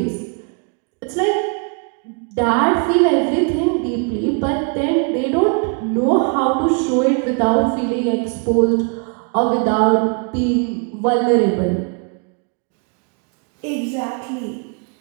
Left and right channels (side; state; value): left; quieter; 37.4 dB